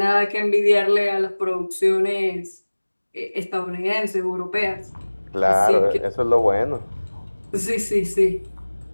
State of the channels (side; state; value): both; inverted; correlation -1.00